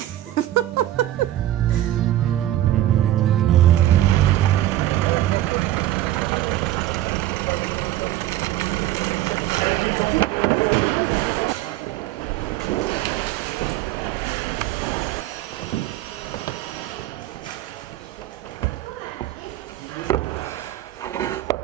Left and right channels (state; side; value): quieter; left; 13.9 dB